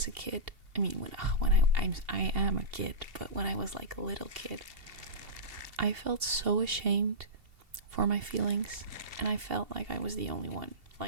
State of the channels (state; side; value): late; left; 2.8 ms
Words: a kid, I am a kid, but when I was like a little kid, I felt so ashamed for my feelings, and I felt like I was the only one.